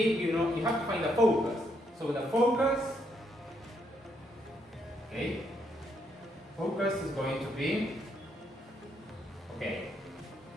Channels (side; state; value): both; normal; correlation 0.75